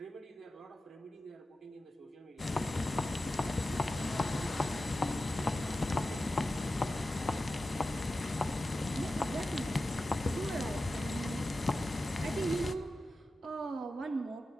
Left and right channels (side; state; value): both; normal; correlation 0.93